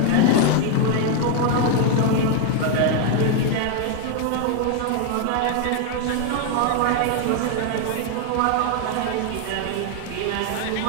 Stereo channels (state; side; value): different; both; correlation 0.00